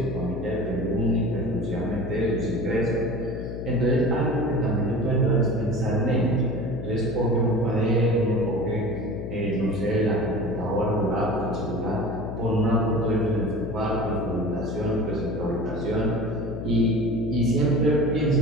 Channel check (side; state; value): left; noise; hum, 7 dB below the sound